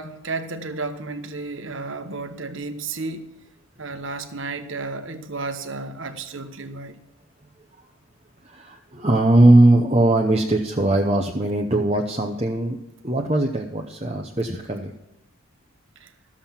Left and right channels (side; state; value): both; normal; correlation 0.79